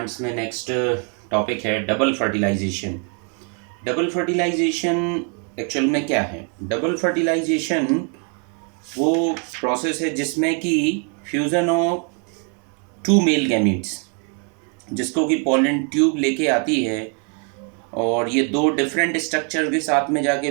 में नेक्स्ट टॉपिक है double fertilisation. Double fertilisation actual में क्या है? डबल फर्टिलाइजेशन वो प्रोसेस है जिसमें कि fusion of two male gametes, जिसको कि पॉलन ट्यूब लेके आती है और ये दो डिफरेंट स्ट्रक्चर के साथ में जाके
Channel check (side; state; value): left; quieter; 39.6 dB